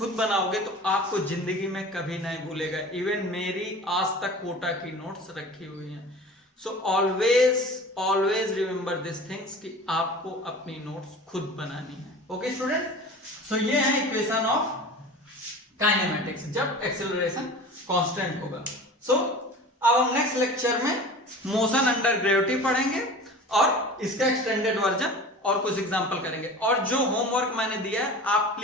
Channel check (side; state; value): both; normal; correlation 0.38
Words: बनाओगे तो आपको जिंदगी में कभी नहीं भूलेगा। इवन मेरी आज तक कोटा की नोट्स रखी हुई हैं। So always remember this things कि आपको अपनी नोट्स खुद बनानी है। ओके स्टूडेंट, सो ये है इक्वेशन ऑफ काइनेमेटिक्स जब एक्सेलरेशन कांस्टेंट होगा। सो अब हम नेक्स्ट लेक्चर में मोशन अंडर ग्रेविटी पढ़ेंगे और इसका एक्सटेंडेड वर्जन और कुछ एग्जांपल करेंगे। और जो होमवर्क मैंने दिया है आप